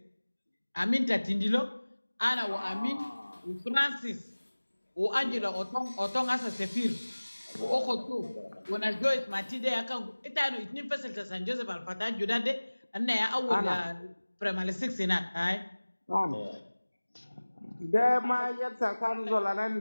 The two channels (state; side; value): inverted; both; correlation -1.00